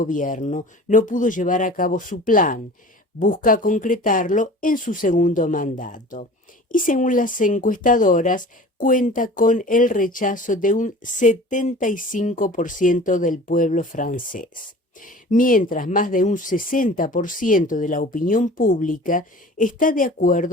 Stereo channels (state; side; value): normal; both; correlation 0.41